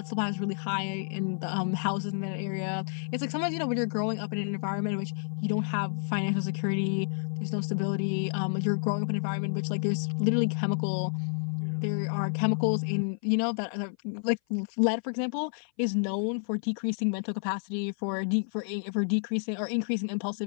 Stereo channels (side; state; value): right; silent; 57 dB below the other